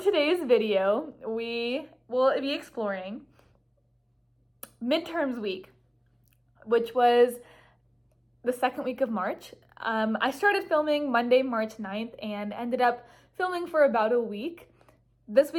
video, we will be exploring midterms week, which was the second week of March. I started filming Monday, March 9th and ended up filming for about a week. This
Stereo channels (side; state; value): both; identical; correlation 1.00